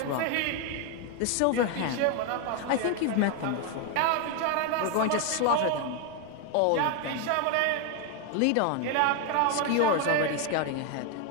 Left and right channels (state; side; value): different; both; correlation 0.01